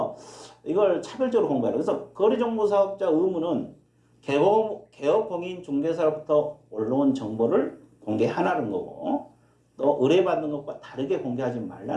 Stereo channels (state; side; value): identical; both; correlation 1.00